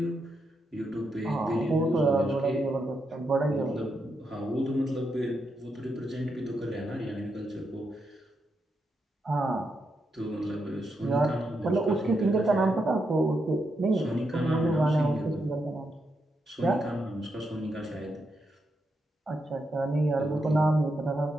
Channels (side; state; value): both; normal; correlation 0.83